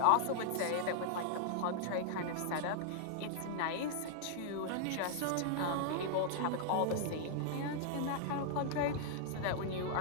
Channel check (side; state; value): both; different; correlation -0.01